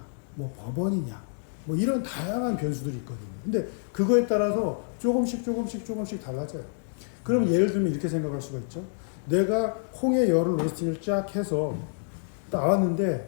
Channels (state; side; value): silent; right; digital silence